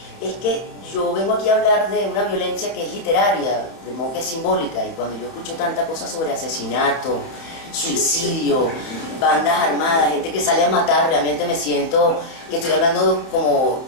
Es que yo vengo aquí a hablar de una violencia que es literaria, de modo que es simbólica, y cuando yo escucho tanta cosa sobre asesinato, suicidio, bandas armadas, gente que sale a matar, realmente me siento que estoy hablando como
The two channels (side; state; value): right; late; 30 ms